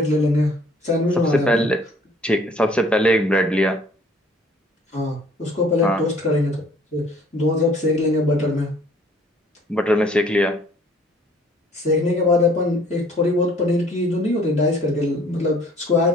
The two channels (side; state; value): both; normal; correlation 0.56